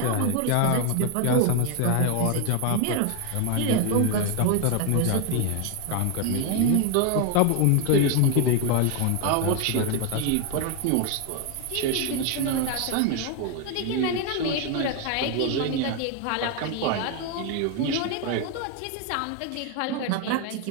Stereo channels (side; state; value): both; different; correlation 0.01